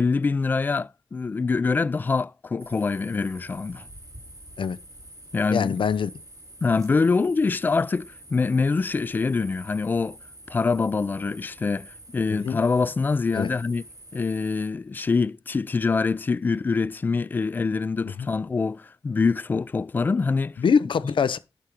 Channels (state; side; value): quieter; right; 4.2 dB